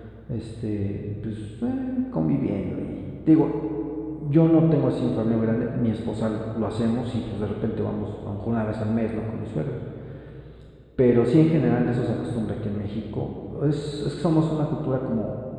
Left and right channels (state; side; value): identical; both; correlation 1.00